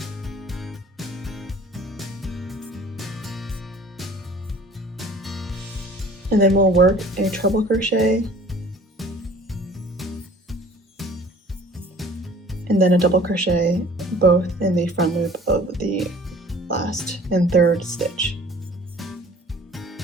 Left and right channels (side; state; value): both; normal; correlation 0.50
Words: And then we'll work a treble crochet, and then a double crochet both in the front loop of the last and third stitch.